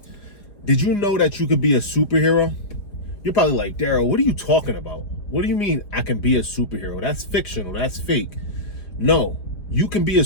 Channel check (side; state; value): right; late; 4.9 ms